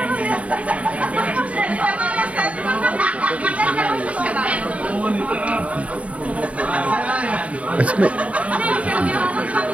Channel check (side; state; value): left; late; 0.066 ms